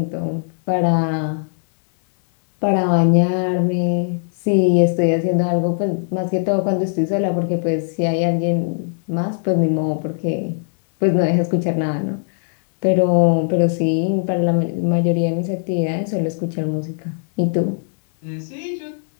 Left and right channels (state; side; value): silent; right; 66 dB below the other